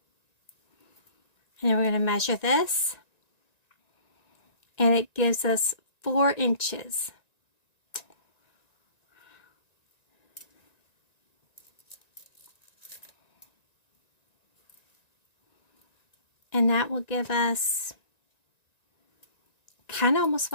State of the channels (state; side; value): late; right; 1.9 ms